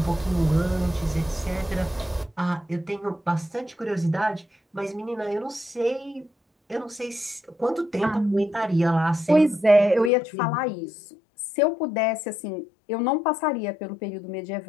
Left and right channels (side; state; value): right; drops out; at 10.1 s